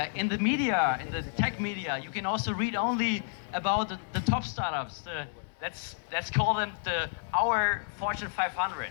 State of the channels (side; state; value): right; silent; 56 dB below the other